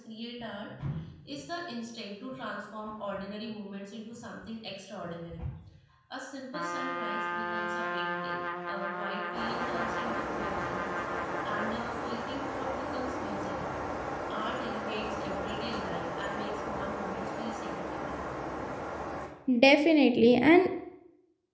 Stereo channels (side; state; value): both; identical; correlation 1.00